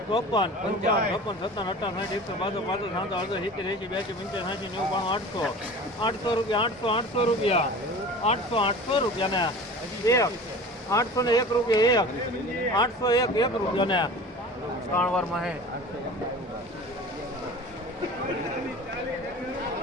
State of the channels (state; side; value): normal; both; correlation 0.39